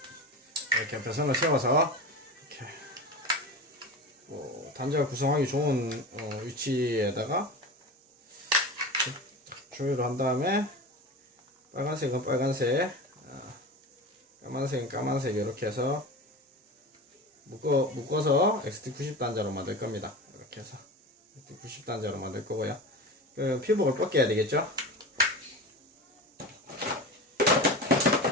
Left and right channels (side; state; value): both; normal; correlation 0.29